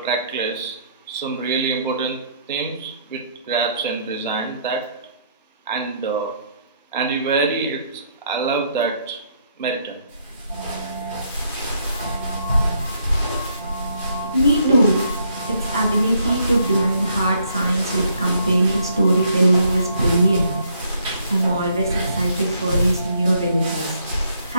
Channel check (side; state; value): both; inverted; correlation -0.70